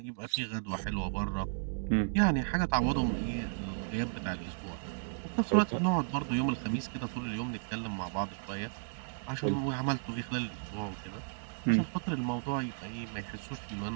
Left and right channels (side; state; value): left; silent; digital silence